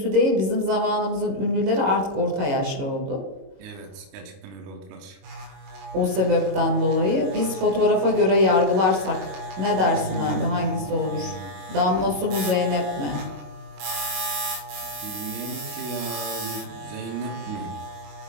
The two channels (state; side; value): late; left; 22 ms